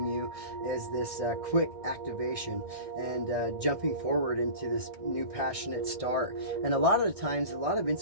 you is this quick activation and jumping forward into this new passionate start. And a lot of the times, a lot of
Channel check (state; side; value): late; left; 1.6 ms